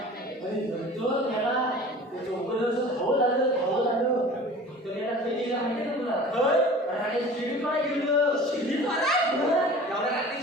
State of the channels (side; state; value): both; normal; correlation 0.42